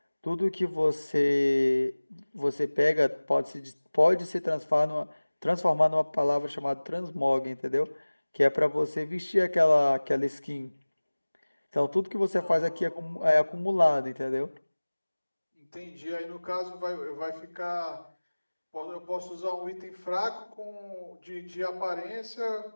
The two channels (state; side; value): inverted; both; correlation -1.00